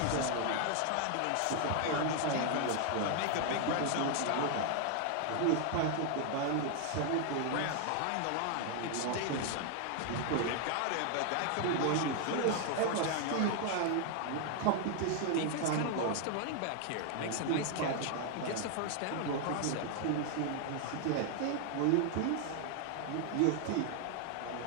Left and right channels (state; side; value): different; both; correlation 0.00